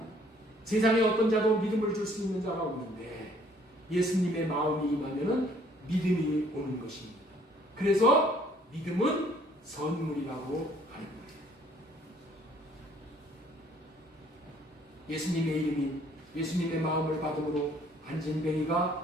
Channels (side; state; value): both; normal; correlation 0.60